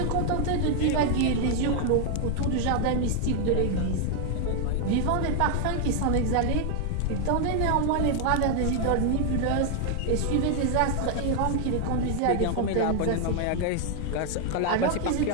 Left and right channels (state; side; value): different; both; correlation 0.00